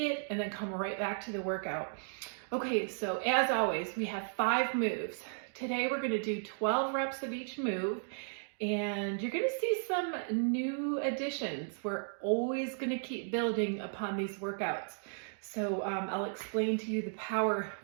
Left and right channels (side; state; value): left; silent; digital silence